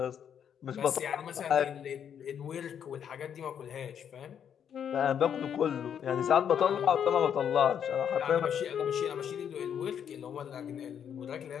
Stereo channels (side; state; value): right; quieter; 8.5 dB